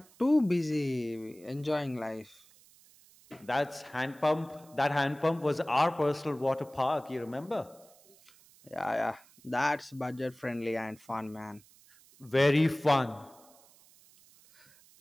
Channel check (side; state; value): right; noise; hiss, 26 dB below the sound